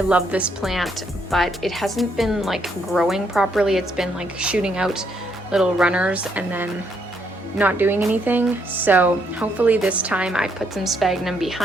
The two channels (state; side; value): normal; both; correlation 0.73